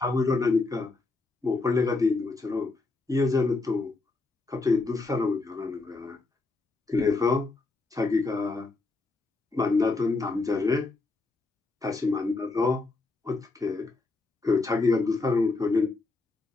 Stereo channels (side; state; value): right; quieter; 3.6 dB